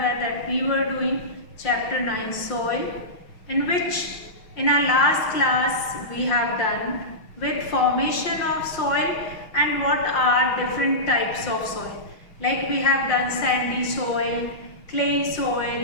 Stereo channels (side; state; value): right; late; 5.6 ms